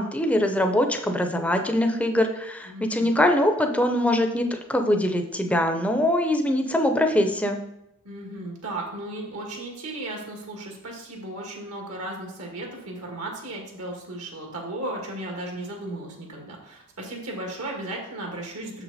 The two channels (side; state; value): both; normal; correlation 0.67